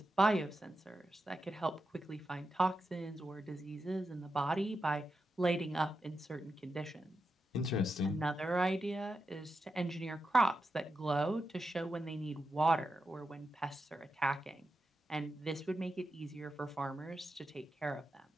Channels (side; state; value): both; normal; correlation 0.88